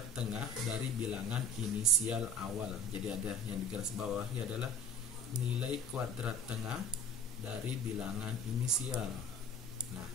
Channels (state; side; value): normal; both; correlation 0.42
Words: tengah dari bilangan inisial awal. Jadi ada yang di garis bawahi adalah nilai kuadrat tengah dari bilangan inisial. Nah,